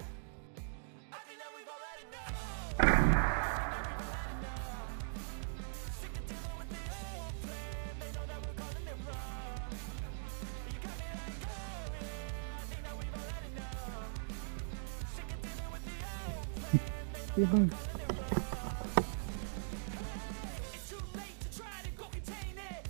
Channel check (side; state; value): left; silent; digital silence